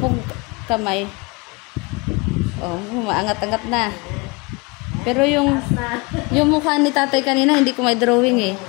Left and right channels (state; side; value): quieter; right; 27.4 dB